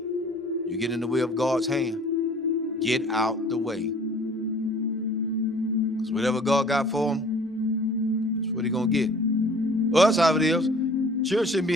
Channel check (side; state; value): both; normal; correlation 0.50